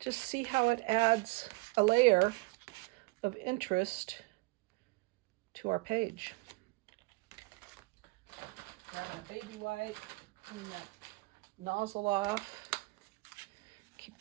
see how it adds a layer of interest to our page. Grab a baby wipe. Clean that nozzle off. Keep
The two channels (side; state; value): left; quieter; 25.0 dB